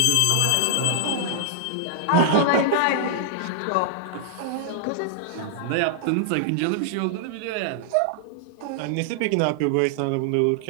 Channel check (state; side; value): different; both; correlation -0.01